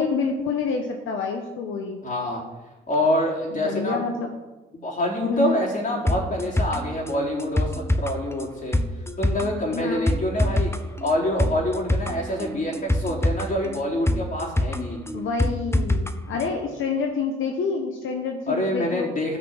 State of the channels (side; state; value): both; normal; correlation 0.57